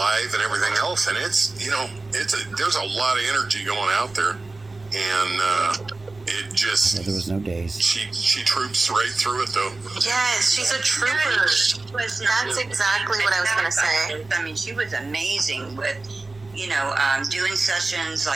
and everything else, and it's, you know, there's a lot of energy going out there, and it just, There was no days. she troops right through it though. Yes, she's a trooper. That's exactly what I was gonna say. I mean, she was amazing with, you know, doing sessions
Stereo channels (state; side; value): quieter; left; 3.3 dB